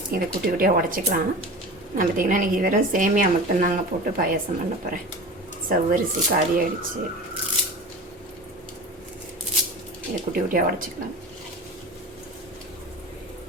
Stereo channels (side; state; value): both; normal; correlation 0.33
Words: இதை குட்டி குட்டியாக உடச்சிக்கலாம். நான் பார்த்திங்கன்னா இன்றைக்கி வெறும் சேமியா மட்டும்தாங்க போட்டு பாயாசம் பண்ண போகிறேன். சவ்வரிசி காலி ஆகிடுச்சு. இதை குட்டி குட்டியாக உடச்சிக்கலாம்.